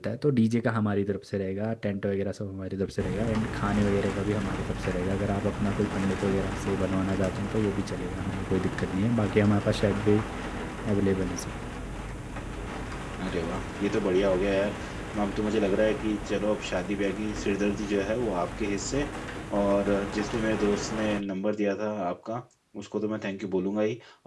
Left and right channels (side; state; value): both; identical; correlation 1.00